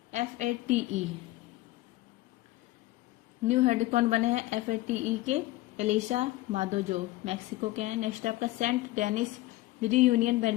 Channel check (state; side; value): quieter; right; 18.0 dB